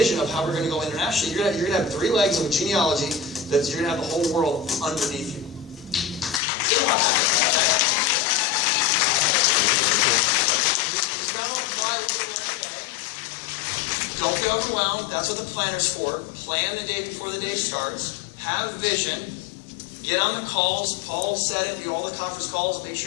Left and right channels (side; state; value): right; drops out; at 6.4 s